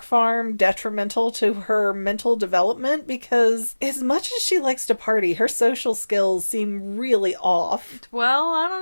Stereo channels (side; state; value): both; inverted; correlation -1.00